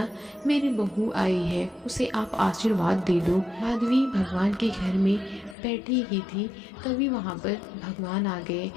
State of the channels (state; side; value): drops out; right; at 5.6 s